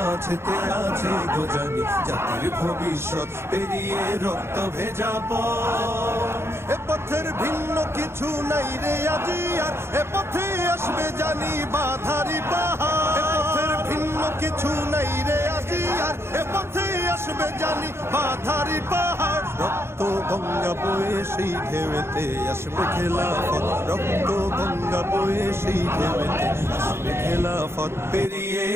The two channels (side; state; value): left; late; 0.12 ms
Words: আছে গোজানি জাতির ভবিষ্যৎ। পেরিয়ে রক্ত ভেজা পথ, এ পথের ভিন্ন কিছু নাই রে আজি আর, এ পথে আসবে জানি বাধারি পাহাড়। এ পথের ভিন্ন কিছু নাই রে আজি আর, এ পথে আসবে জানি বাধারি পাহাড়। রক্ত গঙ্গা বয়ে সেই ঢেউতে আসবে খেলাফত, রক্ত গঙ্গা বয়ে সেই ঢেউতে আসবে খেলাফত। পেরিয়ে